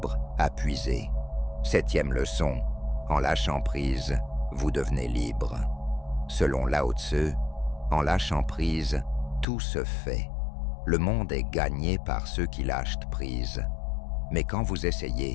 à puiser. 7e leçon, en lâchant prise, vous devenez libre. Selon Lao Tzu, en lâchant prise, tout se fait. Le monde est gagné par ceux qui lâchent prise. Mais quand vous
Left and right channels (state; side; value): drops out; right; at 9.5 s